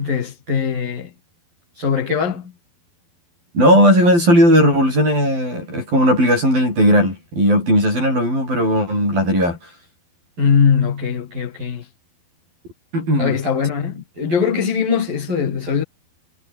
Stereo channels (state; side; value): late; left; 12 ms